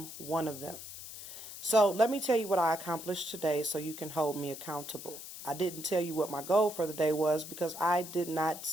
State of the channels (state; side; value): noise; left; hiss, 11 dB below the sound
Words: one of them. So let me tell you what I accomplished today so you can hold me accountable. I didn't tell you what my goal for the day was because I did not